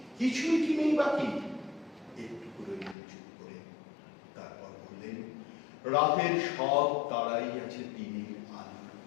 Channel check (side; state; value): right; drops out; at 3.0 s